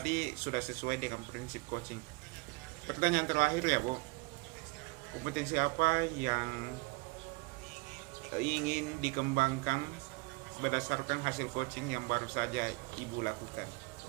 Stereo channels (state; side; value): quieter; left; 26.7 dB